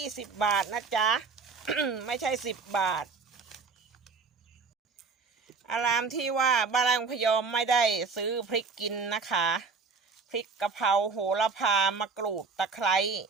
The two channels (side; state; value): left; quieter; 4.8 dB